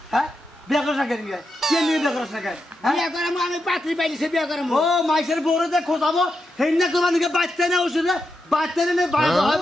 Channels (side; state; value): both; normal; correlation 0.86